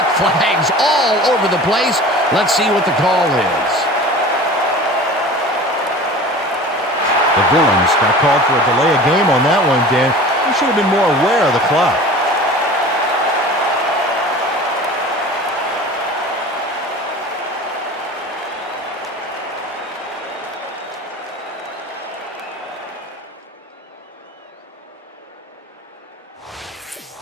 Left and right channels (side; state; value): both; normal; correlation 0.39